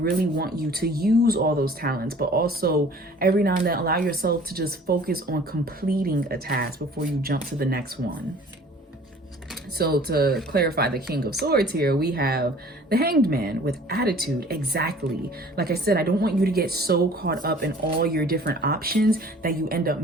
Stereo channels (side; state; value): both; normal; correlation 0.49